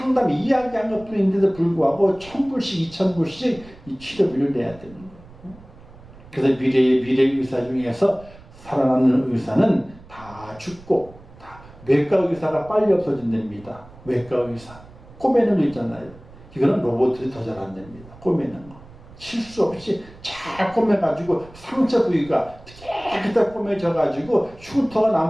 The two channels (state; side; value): noise; right; rumble, 21 dB below the sound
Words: 이야기한 것뿐인데도 불구하고 1,000불씩 2,000불씩 이 치료비를 내야 되는 거예요. 그래서 미래 의사 중에서 살아남는 의사는 다 죽고 다 외과 의사가 빨리 없어진답니다. 외과 의사 꼬매는 거 있잖아요. 이거는 로봇들이 더 잘한답니다. 꼬매는 거 실수 없이 잘 꼬매가지고 상처 부위가 깨끗하게 꼬매져가지고 흉터가